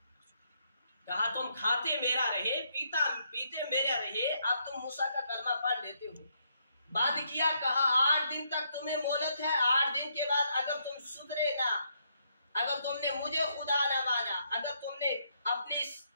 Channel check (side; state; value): both; inverted; correlation -0.75